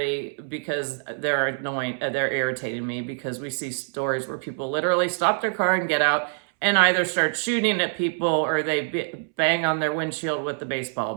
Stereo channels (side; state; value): left; silent; 62 dB below the other